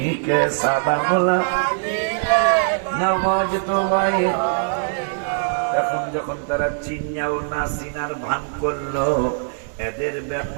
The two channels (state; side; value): silent; left; 65 dB below the other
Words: সালাম দিলে নামাজ তো ভাই। এখন যখন তারা চিনাও না চিনার ভান করলো, এদের